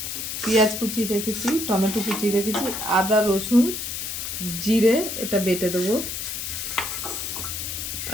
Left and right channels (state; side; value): noise; left; hiss, 5 dB below the sound